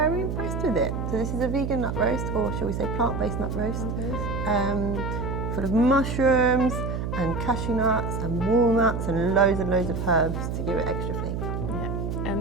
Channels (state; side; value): noise; right; hum, 3 dB below the sound